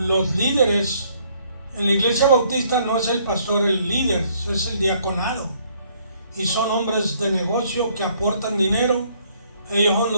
líderes en la iglesia bautista no es el pastor el líder, es el diaconado, y son hombres de negocio que aportan dinero. Ellos son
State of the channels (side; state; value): both; inverted; correlation -0.65